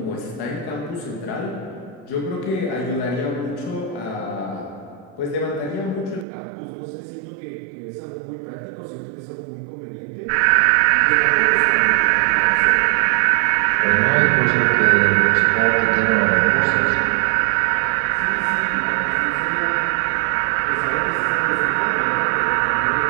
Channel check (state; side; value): drops out; left; at 6.2 s